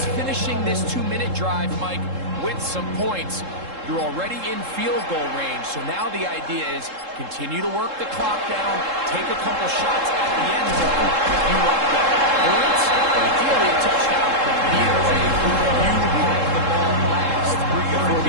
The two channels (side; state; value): left; late; 3.7 ms